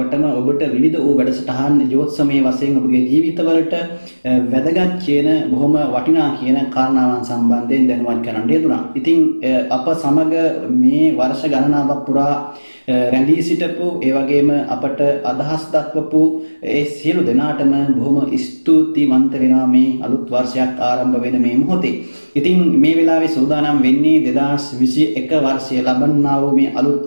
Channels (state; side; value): inverted; both; correlation -1.00